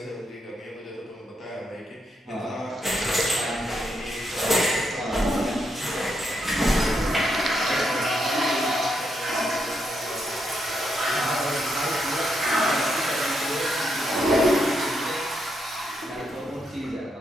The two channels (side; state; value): both; normal; correlation 0.80